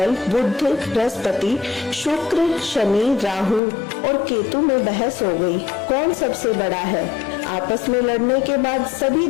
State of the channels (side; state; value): right; drops out; at 3.6 s